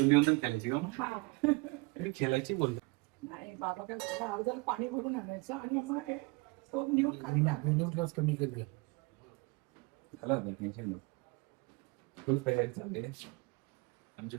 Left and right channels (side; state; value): left; quieter; 27.6 dB